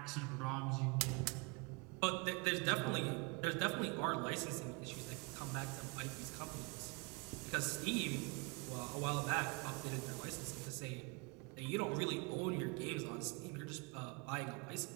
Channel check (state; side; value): quieter; left; 30.5 dB